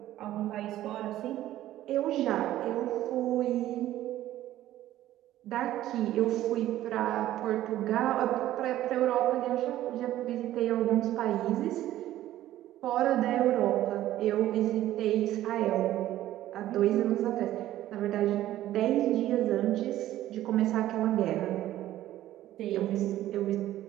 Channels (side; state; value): left; quieter; 13.8 dB